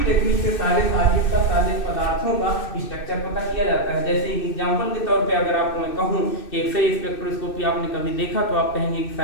टेक्निक से सारे सॉलिड का, सारे पदार्थों का स्ट्रक्चर पता किया जाता है। जैसे एग्जांपल के तौर पे अगर आपको मैं कहूं कि एक्सरे स्पेक्ट्रोस्कोपी आपने कभी देखा तो आप कहेंगे कि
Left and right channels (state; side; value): late; right; 2.6 ms